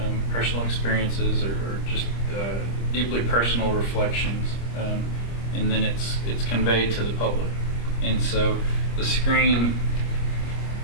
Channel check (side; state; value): right; late; 25 ms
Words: personal experiences or just deeply personal reflections, and then it's conveyed to the public. And so the screen